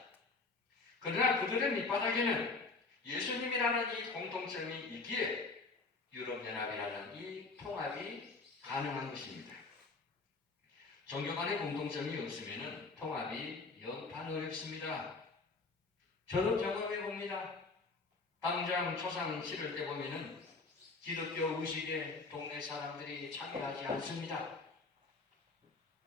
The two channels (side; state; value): right; quieter; 3.9 dB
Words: 그러나 그들의 밑바닥에는 예수님이라는 이 공통점이 있기에 유럽연합이라는 이 통합이 가능한 것입니다. 종교 간의 공통점이 없으면 통합이 영판 어렵습니다. 저도 경험해 봅니다. 당장 초상 치를 때 보면은 기독교 의식에 동네 사람들이 참여하지 않습니다.